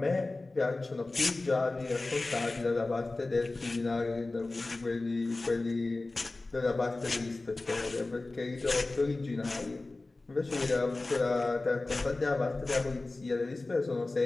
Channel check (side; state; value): right; quieter; 3.2 dB